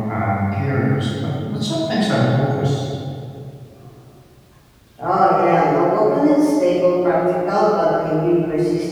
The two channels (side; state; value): both; identical; correlation 1.00